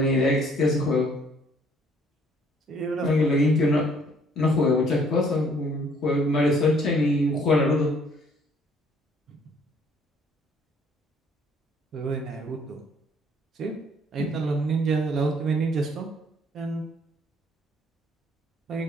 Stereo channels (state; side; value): normal; both; correlation 0.62